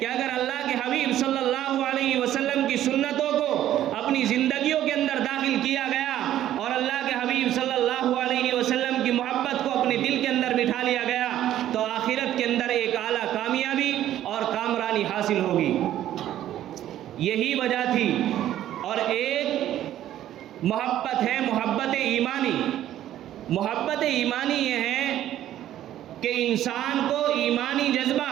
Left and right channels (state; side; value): quieter; left; 12.3 dB